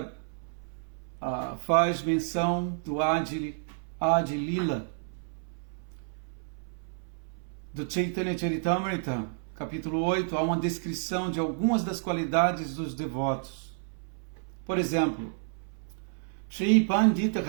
faz menção do Adi Lila, do Chaitanya Charitamrita, capítulo 8, há uma descrição de algumas das qualidades dos devotos. Por exemplo, Shri Pandita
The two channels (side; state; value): left; silent; 58 dB below the other